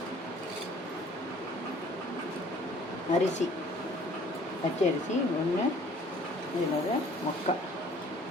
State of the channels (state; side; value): normal; both; correlation 0.54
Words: அரிசி பச்சை அரிசி 1, இதில் 3/4.